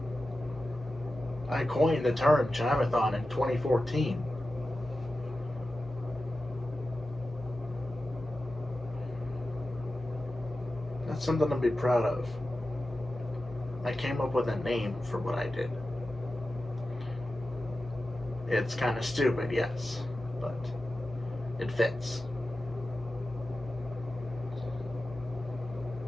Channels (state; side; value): normal; both; correlation 0.93